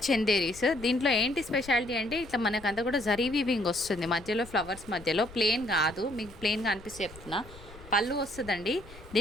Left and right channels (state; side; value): noise; left; rumble, 18 dB below the sound